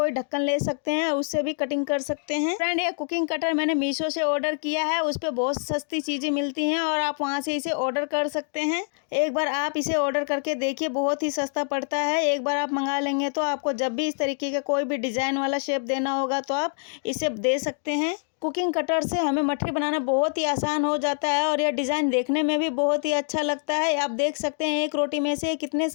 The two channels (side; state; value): right; silent; 61 dB below the other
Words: ढक्कन ले सकते हैं, उससे भी कटिंग कर सकते हैं। फ्रेंड, ये कुकिंग कटर मैंने मीशो से ऑर्डर किया है। उस पर बहुत सस्ती चीज़ें मिलती हैं और आप वहाँ से इसे ऑर्डर कर सकते हैं। एक बार आप इसे ऑर्डर करके देखिए, बहुत ही सस्ता पड़ता है। एक बार आप मंगा लेंगे तो आपको जब भी इस तरीके का कोई भी डिज़ाइन वाला शेप देना होगा तो आप इसे दे सकते हैं। कुकिंग कटर से हमें मठरी बनाना बहुत ही आसान हो जाता है और यह डिज़ाइन देखने में भी बहुत ही अच्छा लगता है। आप देख सकते हैं एक रोटी में से कितने